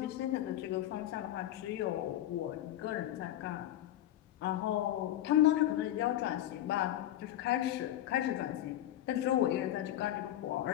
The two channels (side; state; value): right; quieter; 13.0 dB